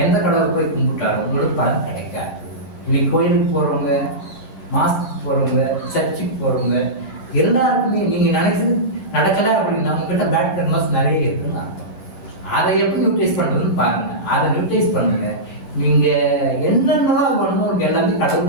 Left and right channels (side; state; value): right; late; 10 ms